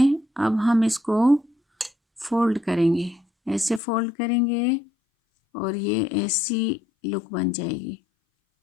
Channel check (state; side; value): drops out; right; at 3.8 s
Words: अब हम इसको फोल्ड करेंगे, ऐसे फोल्ड करेंगे और ये ऐसी लुक बन जाएगी।